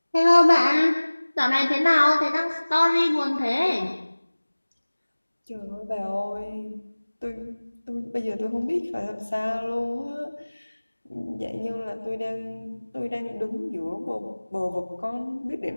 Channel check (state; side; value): inverted; both; correlation -1.00